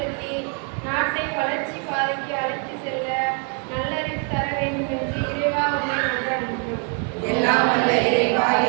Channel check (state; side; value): quieter; left; 38.6 dB